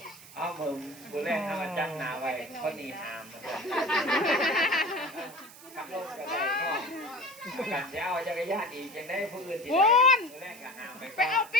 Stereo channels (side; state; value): right; noise; hiss, 19 dB below the sound